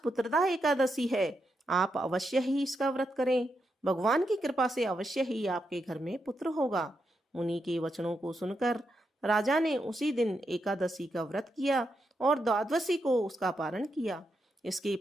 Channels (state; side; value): normal; both; correlation 0.84